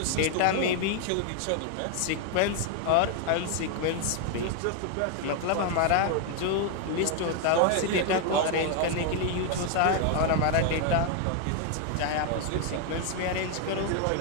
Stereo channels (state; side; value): different; both; correlation 0.01